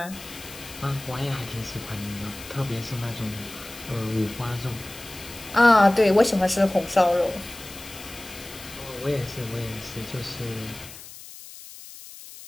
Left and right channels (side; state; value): left; noise; hiss, 15 dB below the sound